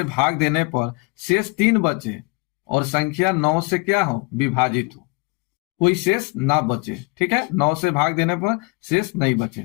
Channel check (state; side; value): quieter; right; 29.7 dB